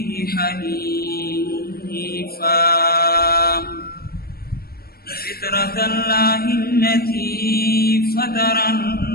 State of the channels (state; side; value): late; right; 0.44 ms